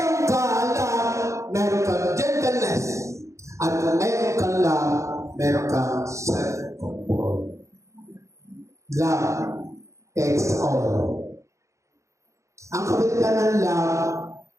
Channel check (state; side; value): late; left; 0.15 ms